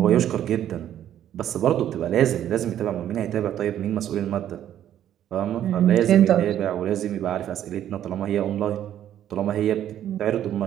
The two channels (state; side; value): quieter; left; 11.1 dB